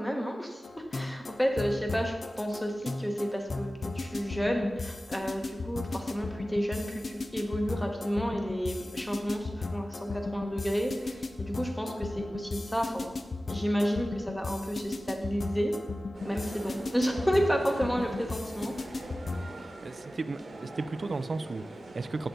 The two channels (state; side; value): normal; both; correlation 0.96